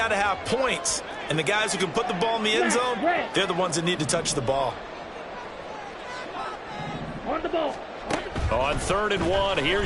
to have points, and the guys who can put the ball in the end zone, they're the ones that need to touch the ball. On the ball. On 3rd and 1,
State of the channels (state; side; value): identical; both; correlation 1.00